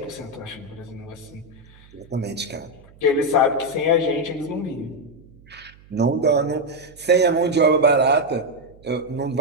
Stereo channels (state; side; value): noise; right; hum, 25 dB below the sound